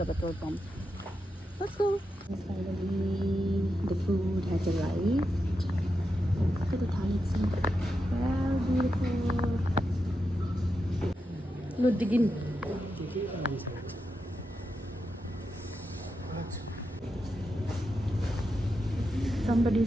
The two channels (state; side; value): normal; both; correlation 0.87